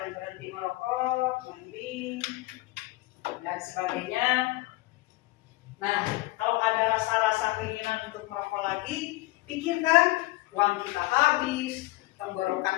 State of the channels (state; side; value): quieter; right; 20.3 dB